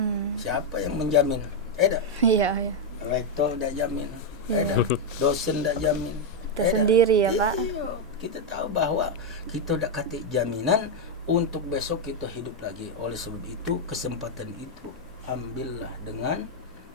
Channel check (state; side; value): normal; both; correlation 0.02